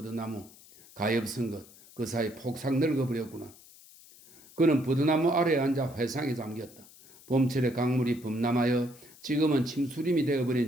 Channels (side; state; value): left; noise; hiss, 23 dB below the sound